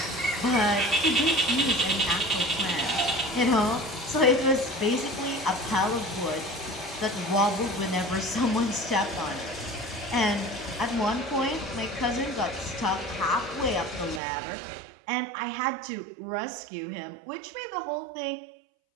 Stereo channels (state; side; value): drops out; left; at 14.2 s